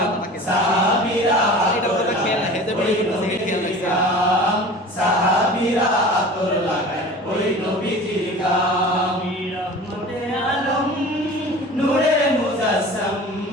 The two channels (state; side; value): normal; both; correlation 0.39